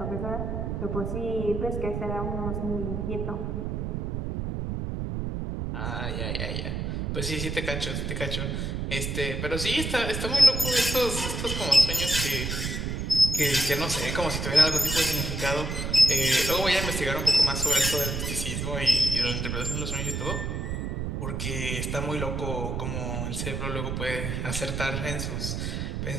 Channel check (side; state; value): right; noise; rumble, 2 dB below the sound